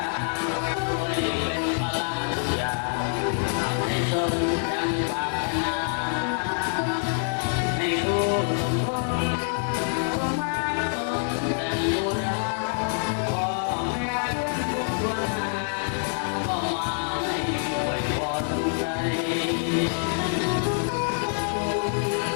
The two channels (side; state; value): right; silent; digital silence